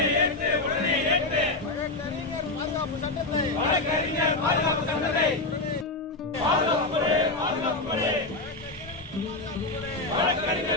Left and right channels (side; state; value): right; quieter; 3.0 dB